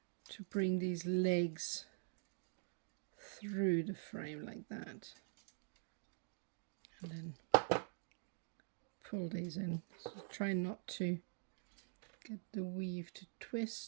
to bring these legs through the frame like that, and then pull these in. So try not to get the weave to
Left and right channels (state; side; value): silent; left; digital silence